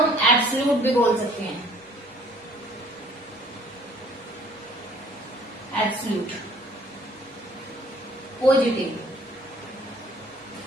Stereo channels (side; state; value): both; normal; correlation 0.56